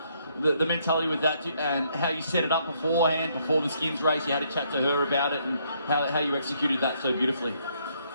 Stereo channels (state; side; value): inverted; both; correlation -0.70